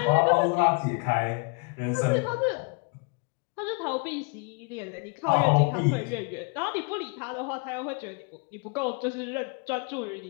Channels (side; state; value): right; quieter; 33.2 dB